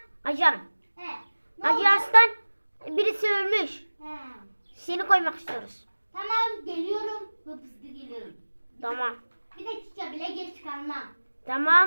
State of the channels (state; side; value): inverted; both; correlation -1.00